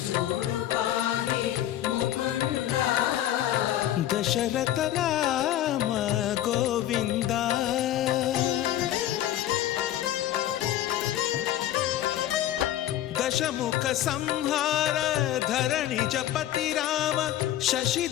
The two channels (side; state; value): right; quieter; 12.7 dB